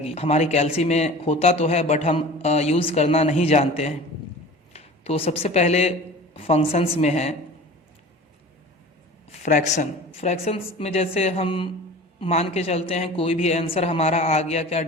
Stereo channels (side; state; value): both; normal; correlation 0.39